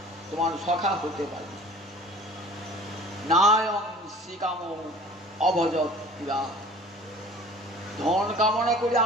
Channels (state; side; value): normal; both; correlation 0.46